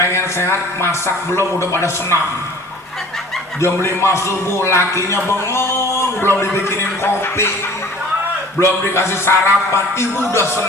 sehat, masak belum, udah pada senam. Jam 5 subuh lakinya bengong, belum dibikinin kopi, belum dikasih sarapan, ibu udah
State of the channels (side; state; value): both; normal; correlation 0.48